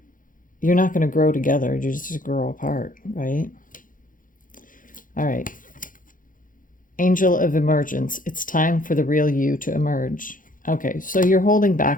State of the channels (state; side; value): late; right; 0.39 ms